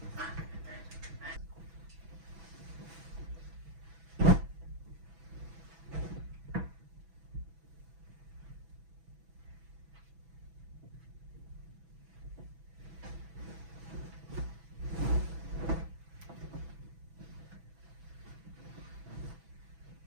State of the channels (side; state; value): left; late; 6.1 ms